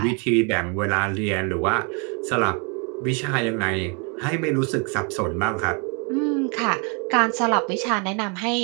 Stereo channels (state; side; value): quieter; left; 34.5 dB